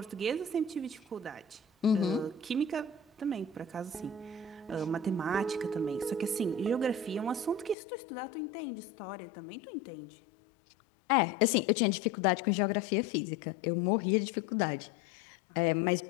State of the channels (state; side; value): drops out; right; at 7.8 s